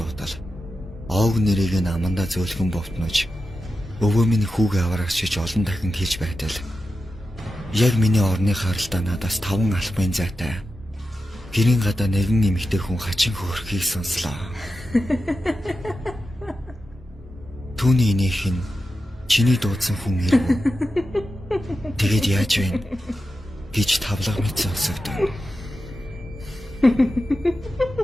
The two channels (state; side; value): normal; both; correlation 0.91